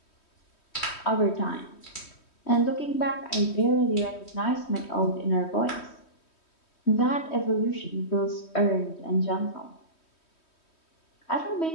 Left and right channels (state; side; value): late; right; 3.1 ms